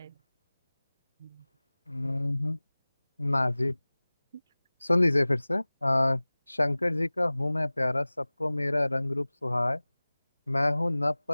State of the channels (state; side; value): inverted; both; correlation -1.00